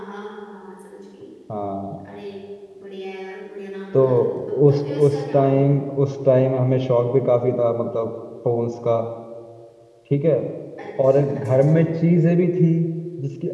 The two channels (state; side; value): identical; both; correlation 1.00